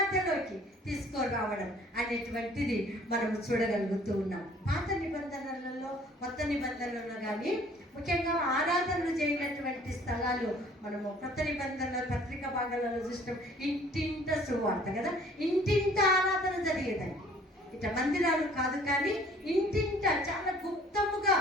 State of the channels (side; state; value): both; normal; correlation 0.55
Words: తీసుకురావడం అనేటువంటిది మనం చూడగలుగుతూ ఉన్నాం. పాత నిబంధనలలో, కొత్త నిబంధనలలో కానీ ముఖ్యంగా ఆరాధనలు చేయనటువంటి స్థలాలు మనము కొత్త నిబంధనల పత్రిక భాగాలలో చూసినాం. ఇంటింట సువార్త కదా, ఇంటింట ఆరాధన జరిగేదండి. ఇట్లా మందిరాలు కాదు కానీ ఇంటింట చాలా గుప్తముగా,